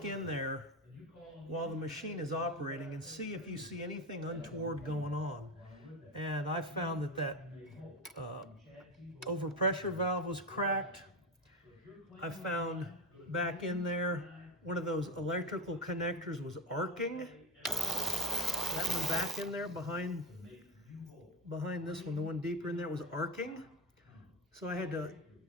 in there while the machine is operating and see if you see anything untoward going on. And I found that overpressure valve was cracked. I found back in there one of those electrical connectors was arcing. That one back in there behind this one, the one deeper in there, was arcing. So I had to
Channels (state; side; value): normal; both; correlation 0.19